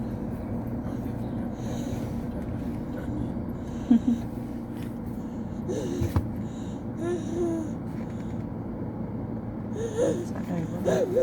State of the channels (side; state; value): both; identical; correlation 1.00